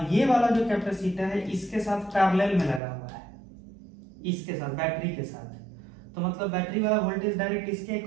ये वाला जो कैपेसिटर है इसके साथ पैरेलल में लगा हुआ है, इसके साथ बैटरी के साथ, तो मतलब बैटरी वाला वोल्टेज डायरेक्ट इसके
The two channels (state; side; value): drops out; left; at 2.8 s